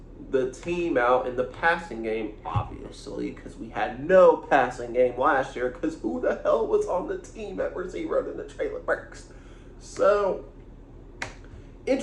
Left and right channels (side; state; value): both; identical; correlation 1.00